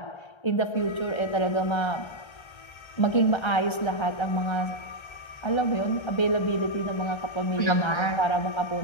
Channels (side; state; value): right; late; 1.3 ms